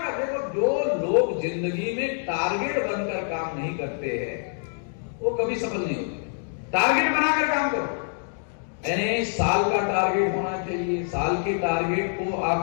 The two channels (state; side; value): silent; right; 61 dB below the other